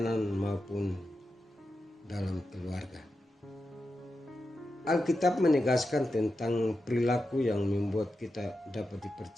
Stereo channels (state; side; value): normal; both; correlation 0.89